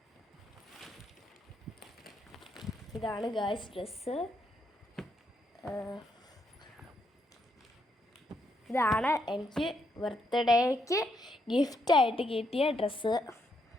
ഇതാണ് ഗായ്സ് ഡ്രസ്സ്. ഇതാണ് എനിക്ക് ബർത്ത്ഡേക്ക് ഗിഫ്റ്റായിട്ട് കിട്ടിയ ഡ്രസ്സ്.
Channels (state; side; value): normal; both; correlation 0.77